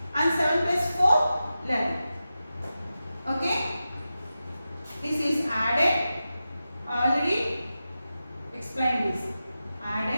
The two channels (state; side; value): inverted; both; correlation -0.92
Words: And 7 plus 4, 11. Okay? This is added. Already explained this.